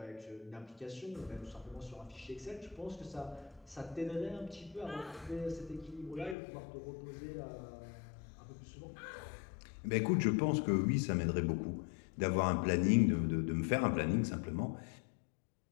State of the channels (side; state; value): right; drops out; at 6.4 s